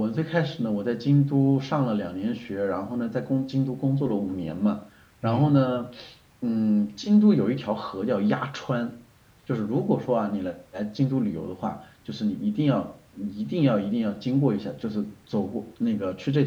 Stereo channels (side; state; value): both; identical; correlation 1.00